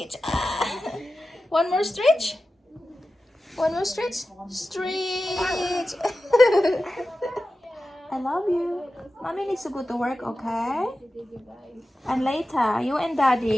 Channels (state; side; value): normal; both; correlation 0.93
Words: One more stretch? One more stretch? Stretch. I love you. Mommy needs to go to work, okay? And later, you and